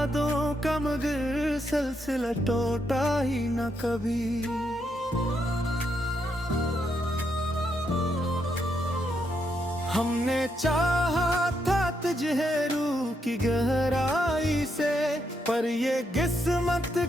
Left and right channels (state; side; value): normal; both; correlation 0.79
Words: का मगर सिलसिला टूटा ही ना कभी। हमने चाहा था तुझे रूह की गहराई से, पर ये किस्मत